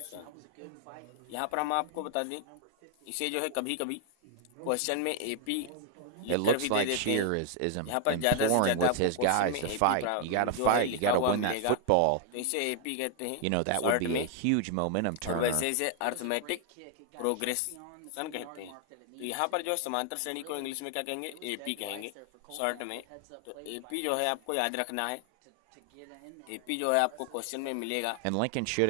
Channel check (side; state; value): both; different; correlation 0.00